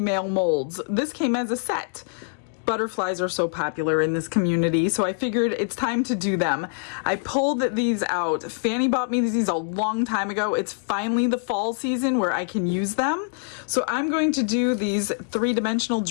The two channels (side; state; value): right; silent; digital silence